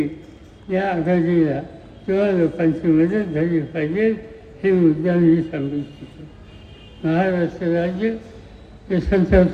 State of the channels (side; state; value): both; identical; correlation 1.00